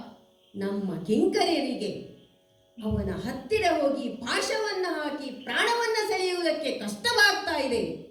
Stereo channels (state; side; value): identical; both; correlation 1.00